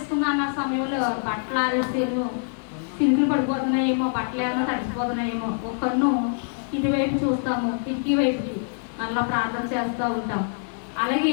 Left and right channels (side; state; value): right; silent; 62 dB below the other